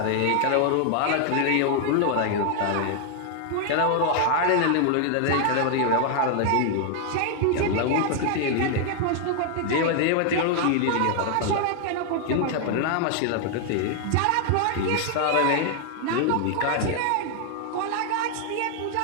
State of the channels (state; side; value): different; both; correlation 0.00